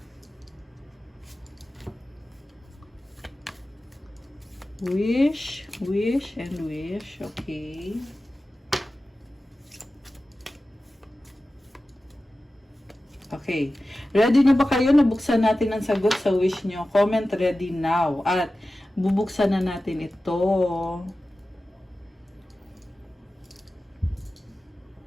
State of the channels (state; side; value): normal; both; correlation 0.95